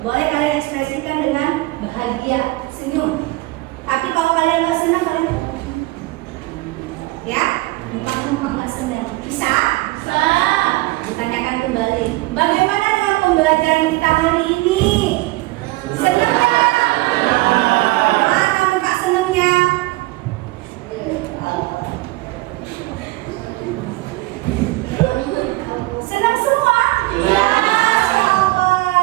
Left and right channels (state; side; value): quieter; left; 21.1 dB